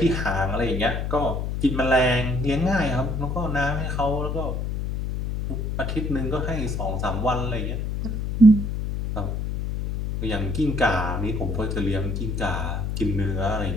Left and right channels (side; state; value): left; noise; hum, 2 dB below the sound